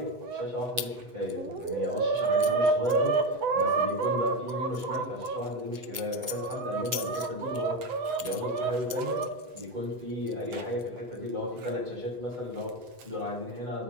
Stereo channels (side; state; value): left; late; 8.0 ms